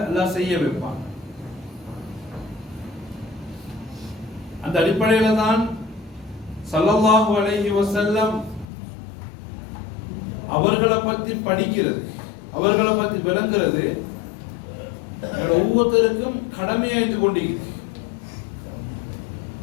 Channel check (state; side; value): drops out; right; at 8.7 s